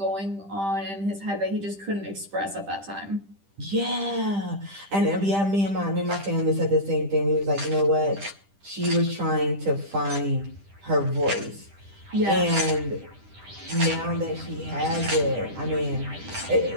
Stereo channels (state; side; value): late; left; 10 ms